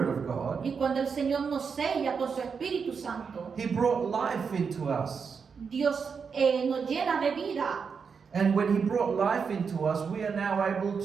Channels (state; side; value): quieter; left; 5.9 dB